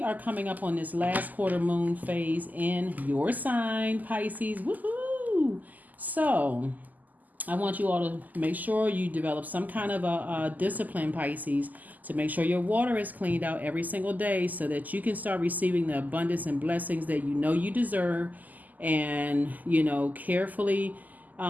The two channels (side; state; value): left; late; 0.082 ms